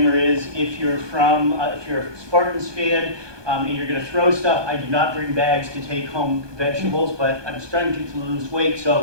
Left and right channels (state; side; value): late; left; 1.2 ms